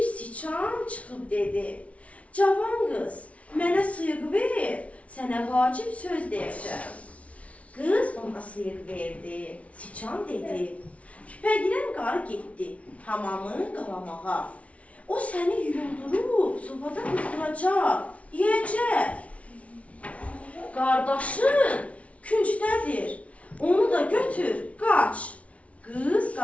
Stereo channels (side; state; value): right; late; 0.065 ms